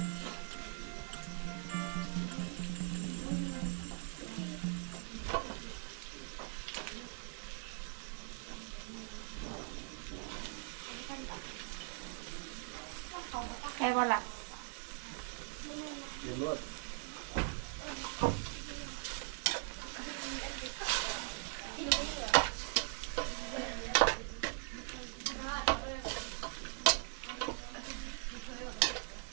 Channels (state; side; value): silent; left; 51 dB below the other